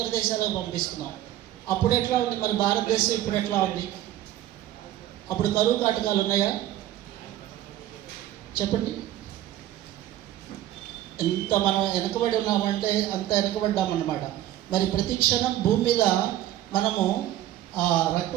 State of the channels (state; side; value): quieter; left; 13.4 dB